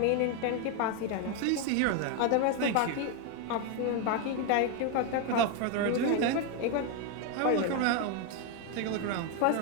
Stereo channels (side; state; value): both; different; correlation 0.01